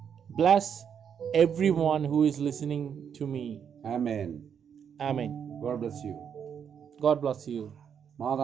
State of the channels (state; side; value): quieter; left; 7.8 dB